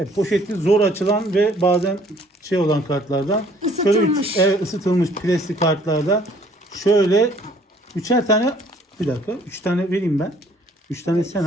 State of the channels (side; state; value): both; normal; correlation 0.59